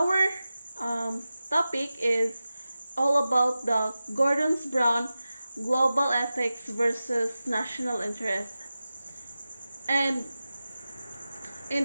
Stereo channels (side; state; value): both; inverted; correlation -0.94